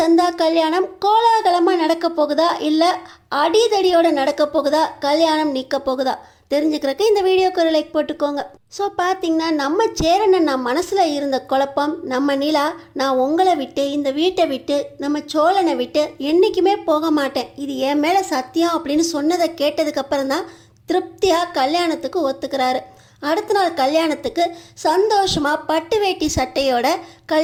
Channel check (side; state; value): both; identical; correlation 1.00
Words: கல்யாணம் கோலாகலமாக நடக்க போகுதா, இல்லை அடிதடியோட நடக்க போகுதா, கல்யாணம் நிற்க போகுதா தெரிஞ்சுக்கிறதுக்கு இந்த வீடியோக்கு ஒரு லைக் போட்டுக்கோங்க. ஸோ பார்த்தீங்கன்னா நம்ம சேரனை நான் மனசில் இருந்த குழப்பம், நம்ம நிலா நான் உங்களை விட்டு இந்த வீட்டை விட்டு நம்ம சோழனை விட்டு என்றைக்குமே போக மாட்டேன், இது என் மேலே சத்தியம் அப்படின்னு சொன்னதை கேட்டதுக்கப்புறம் தான் திருப்தியாக கல்யாணத்துக்கு ஒத்துக்கிறாரு. அடுத்த நாள் கல்யாணத்துக்கு சந்தோஷமாக பட்டு வேட்டி சட்டையோட